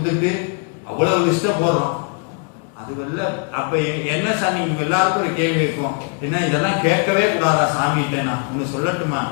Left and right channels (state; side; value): quieter; right; 40.0 dB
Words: அவ்வளவு லிஸ்ட போடுறோம். அது வெல்ல. அப்ப என்ன சார், நீங்க எல்லாருக்கும் ஒரு கேள்வி இருக்கும், என்ன இதெல்லாம் கேட்கவே கூடாதா சாமிகிட்ட? நான் ஒண்ணு சொல்லட்டுமா,